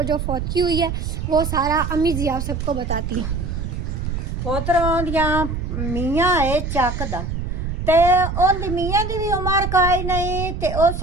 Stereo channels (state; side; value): noise; right; rumble, 4 dB below the sound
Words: जो फौतगी हुई है वो सारा अम्मी जी आप सबको बताती हैं। पोतरों दियां मियाँ है चकदा ते ओंदी मियाँ दी भी उम्र काई नहीं ते उस